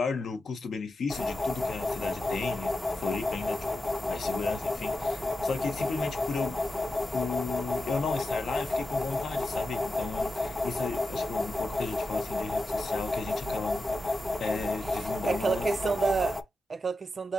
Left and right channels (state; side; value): normal; both; correlation 0.90